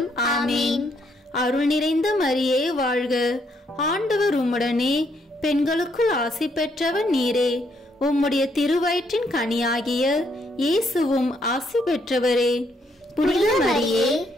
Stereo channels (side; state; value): both; normal; correlation 0.72